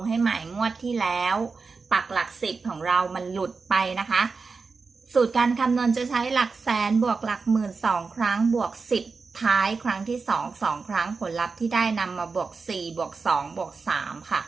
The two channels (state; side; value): quieter; left; 4.6 dB